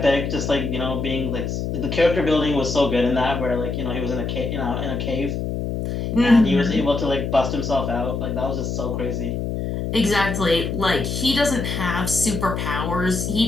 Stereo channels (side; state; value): left; noise; hum, 3 dB below the sound